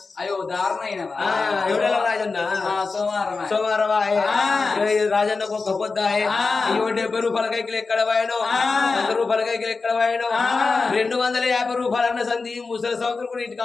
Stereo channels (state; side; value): quieter; right; 4.2 dB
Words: అయ్యో దారుణ ఎవడెలా రాజన్న సోమవారం రాజన్నకు ఒక పొద్దు 70 రూపాయల కైకిలు ఎక్కడ పోయాను 100 రూపాయల కైకిలు ఎక్కడ పోయాను 250 రూపాయలన్న సంధి ముసలి సంవత్సరం కూడా ఇంటికి